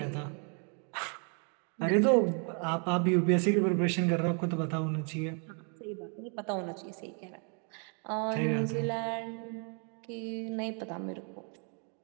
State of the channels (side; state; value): left; quieter; 39.4 dB